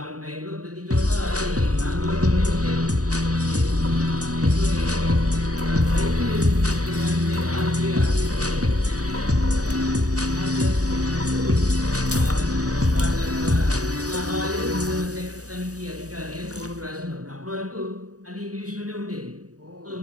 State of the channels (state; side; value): late; left; 0.66 ms